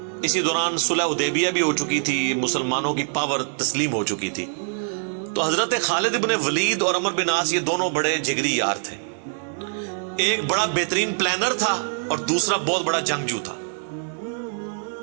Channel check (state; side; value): silent; left; digital silence